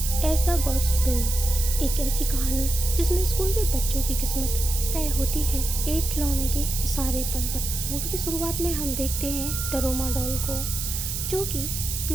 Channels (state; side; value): noise; right; hiss, 4 dB below the sound